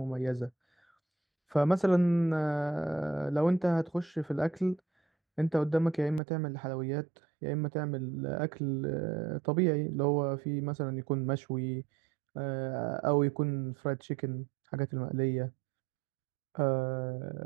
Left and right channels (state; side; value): drops out; left; at 6.2 s